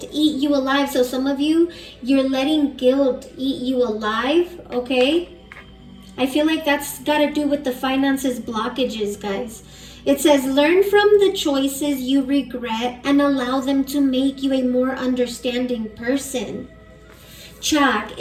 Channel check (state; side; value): identical; both; correlation 1.00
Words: eat you alive. So some of you, you're letting guilt eat you alive, okay? I feel like that's got to do with the finances blockages, guys. It says, learn from the choices you regret and allow them to make you a more understanding person. Chak